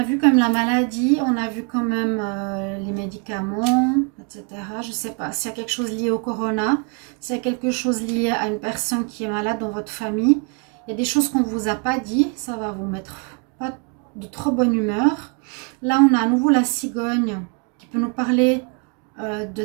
vu comme la maladie, on a vu quand même les médicaments, etc. Je ne sais pas s'il y a quelque chose lié au corona, s'il y a quelque chose lié à une personne qui est malade dans votre famille. Il y a des choses qu'on ne vous a pas dit, ça va vous mettre pas de trop bonne humeur. Là, on a à nouveau la cigogne qui peut nous parler de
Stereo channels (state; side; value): quieter; left; 35.5 dB